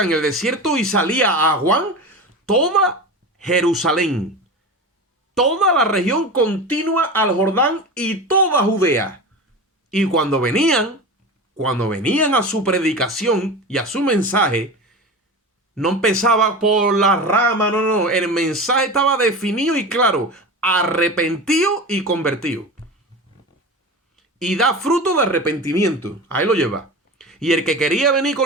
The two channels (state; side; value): normal; both; correlation 0.28